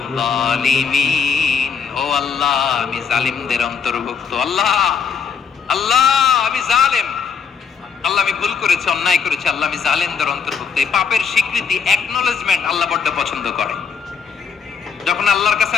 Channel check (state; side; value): quieter; right; 6.1 dB